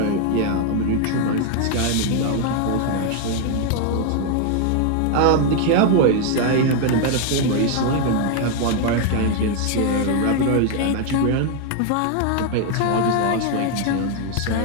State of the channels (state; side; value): different; both; correlation 0.01